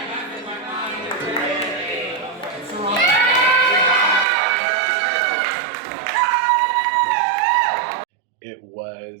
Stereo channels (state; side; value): drops out; left; at 4.2 s